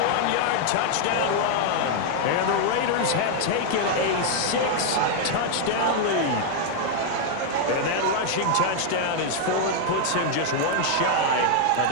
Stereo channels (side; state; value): both; different; correlation 0.00